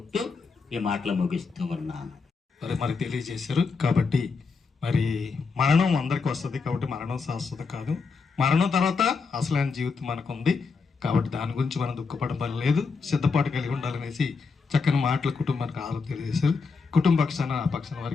ఈ మాటలు ముగిస్తూ ఉన్నాను. మరి తెలియజేశారు. కాబట్టి మరి మరణం అందరికి వస్తుంది, కాబట్టి మరణం శాశ్వత కాదు. మరణం తర్వాత అసలైన జీవితం మనకు ఉంది. కాబట్టి దాని గురించి మనం దుఃఖపడడం పని లేదు, సిద్ధపాటు కలిగి ఉండాలనేసి చక్కని మాటలు కుటుంబానికి ఆలోచన తెలియజేశారు. కుటుంబ పక్షాన ఆ పక్షాన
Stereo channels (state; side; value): quieter; right; 4.8 dB